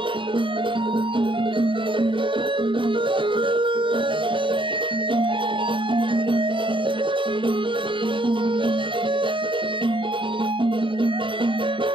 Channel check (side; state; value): left; late; 0.24 ms